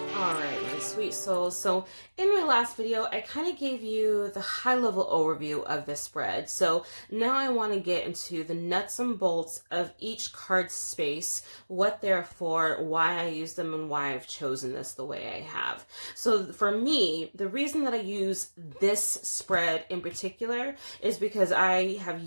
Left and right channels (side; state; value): both; inverted; correlation -1.00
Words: Alright, my sweet souls. So in my last video, I kind of gave you the high-level overview of this spread. So now I want to get into the nuts and bolts of each card space, what they're for, why I use them, and why I've chosen this the way I have. So for me, the reason that I use this spread in particular is because I have